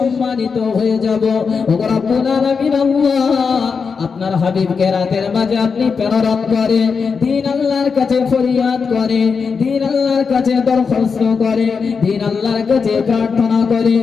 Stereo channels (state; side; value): quieter; right; 5.5 dB